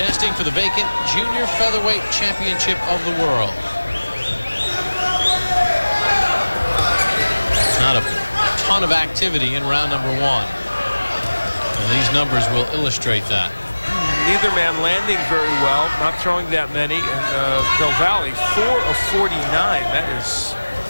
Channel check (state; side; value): inverted; both; correlation -1.00